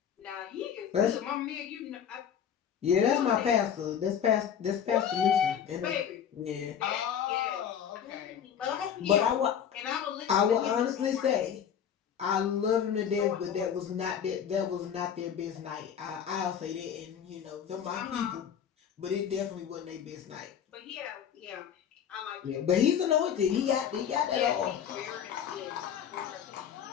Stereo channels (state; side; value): quieter; right; 8.5 dB